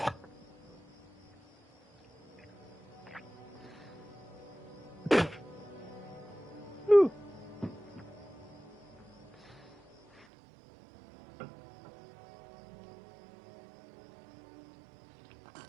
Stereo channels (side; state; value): left; drops out; at 10.2 s